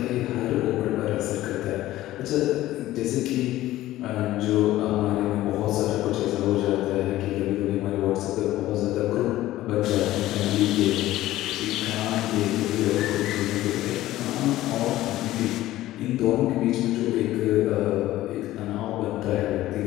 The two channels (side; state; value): right; quieter; 15.4 dB